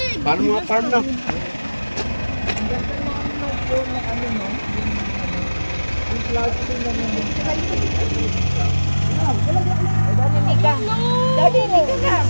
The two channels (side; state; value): both; inverted; correlation -1.00